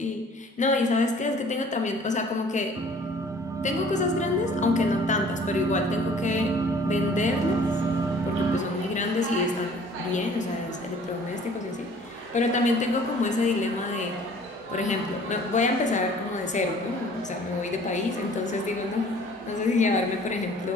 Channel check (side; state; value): both; normal; correlation 0.52